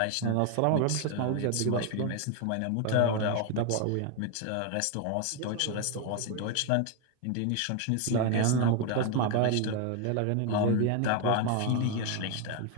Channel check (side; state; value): both; different; correlation 0.01